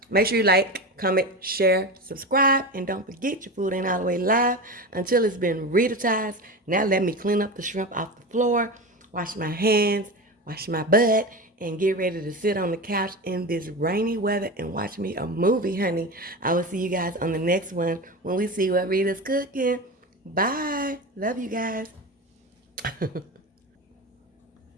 Make sure you like, comment, share, subscribe, and don't forget your food ain't all the way live until it's been RitasEatas. Now let me clean up the shrimp off the floor, wash my hands, wash my butt, and get ready to sit on the couch in this rainy weather and watch me a movie, honey. I will see you guys on the next one when we see what Rita's cooking. Bye. Love you guys.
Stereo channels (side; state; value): both; normal; correlation 0.25